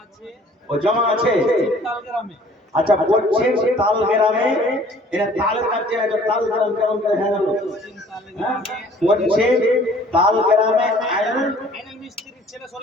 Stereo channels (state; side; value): normal; both; correlation 0.53